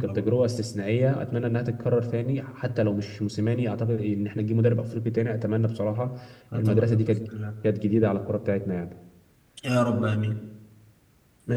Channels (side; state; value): both; identical; correlation 1.00